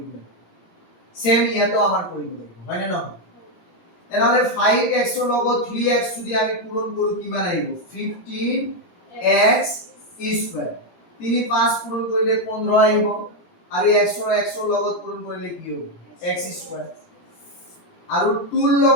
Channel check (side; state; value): right; late; 17 ms